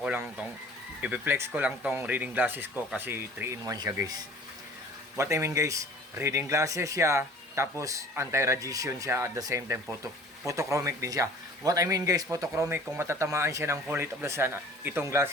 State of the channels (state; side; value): normal; both; correlation 0.47